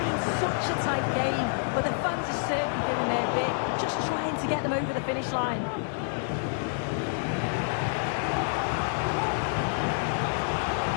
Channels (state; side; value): silent; right; 59 dB below the other